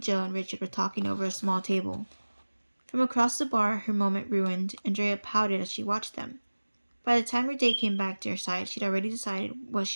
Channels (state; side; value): inverted; both; correlation -1.00